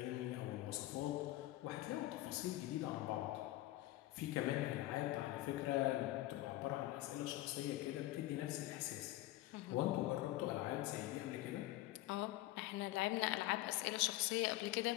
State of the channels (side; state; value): right; quieter; 16.7 dB